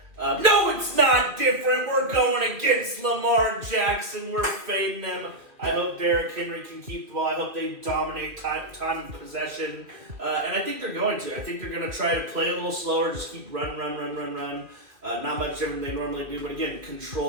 No, it's not different. We're going against Lamar Jackson. We're fading him. I hope Derrick Henry can keep the ball. I hope they dominate time and possession. And I think they're going to. I think they're going to try to play a little slower, just keep run. Not much different than they normally do, but again,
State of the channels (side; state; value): left; late; 2.6 ms